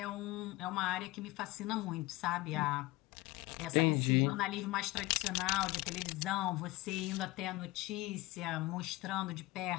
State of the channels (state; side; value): quieter; right; 19.6 dB